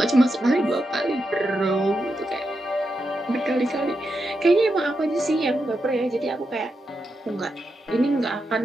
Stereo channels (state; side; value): normal; both; correlation 0.86